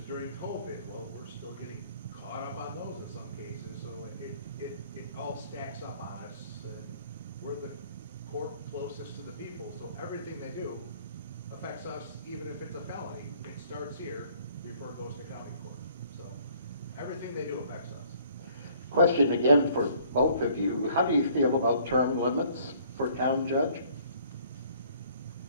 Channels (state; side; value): inverted; both; correlation -0.59